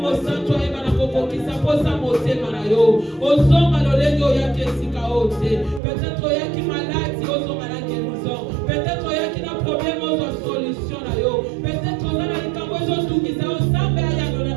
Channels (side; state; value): left; drops out; at 5.8 s